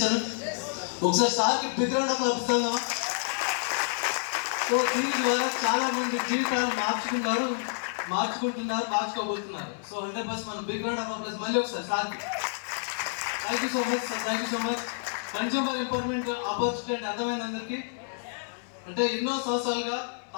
ఒకసారి సార్కి big round of applause. So దీని ద్వారా చాలా మంది జీవితాలను మార్చుకోబోతున్నారు. సో 100% మనం బిగ్ రౌండ్ ఆఫ్ అప్లాస్ మళ్ళీ ఒకసారి సార్కి. Thank you so much sir, thank you so much. Consumer empowerment opportunity అంటే అర్థమైన అందరికీ, అంటే ఎన్నో సంవత్సరాలుగా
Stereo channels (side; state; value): right; silent; 58 dB below the other